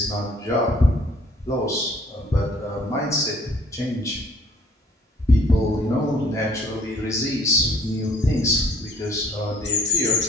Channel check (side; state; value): both; normal; correlation 0.58